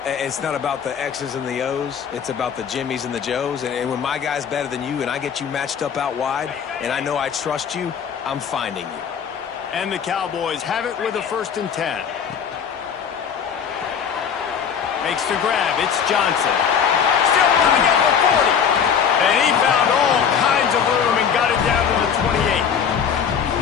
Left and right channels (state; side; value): quieter; right; 7.4 dB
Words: it's not about the X's and the O's. It's about the Jimmys and the Joes. And when my guy's better than you and I get you matched up out wide and I know I trust you, I'm finding you. And the Cowboys have it with a 1st and 10. Makes the grab. It's Johnson. Still running at the 40. And he found all kinds of room and got it down to the 28.